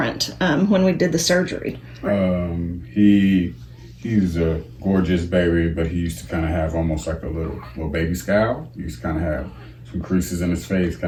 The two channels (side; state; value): both; identical; correlation 1.00